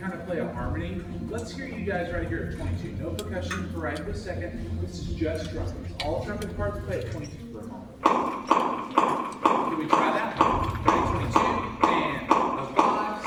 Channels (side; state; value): both; identical; correlation 1.00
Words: of play a harmony. Let's hear you guys right here at 22. No percussion for right this second. This is just trumpets. All trumpet parts play at 22 for a moment. Can we try that? Ready, 22, and a 5,